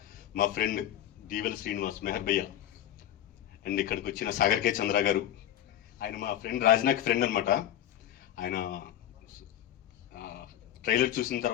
మా ఫ్రెండ్ దీవెల్ శ్రీనివాస్, మెహర్ భయ్య, అండ్ ఇక్కడికి వచ్చిన సాగర్ కే చంద్ర గారు, ఆయన మా ఫ్రెండ్ రాజ్నాక్ ఫ్రెండ్ అనమాట. ఆయన ట్రైలర్ చూసిన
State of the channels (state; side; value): quieter; right; 11.6 dB